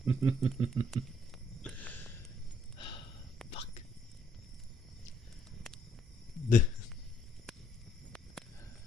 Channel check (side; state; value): both; normal; correlation 0.69